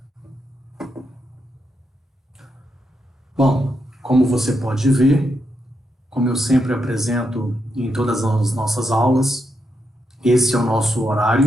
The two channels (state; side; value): normal; both; correlation 0.83